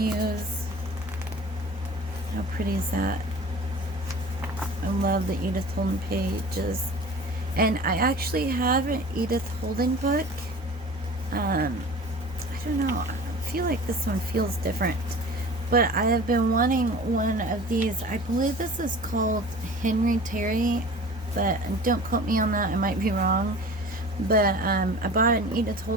How pretty is that? I love the Edith Holden pages. And I actually have an Edith Holden book. I don't know. I feel like this one feels different. But I have been wanting one of these. I believe this is called Henry Terry, but don't quote me on that. I might be wrong. But I bought an Edith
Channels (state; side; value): normal; both; correlation 0.40